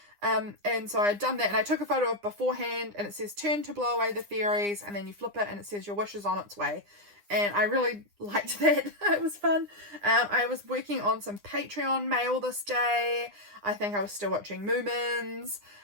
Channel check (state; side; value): late; left; 9.8 ms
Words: And so I'd done that, and I took a photo of beforehand, and it says turn to blow away the fairies, and then you flip it and it says your wish is on its way. And I really liked that. It was fun. I was working on some Patreon mail this day. I think I was still watching Moomins.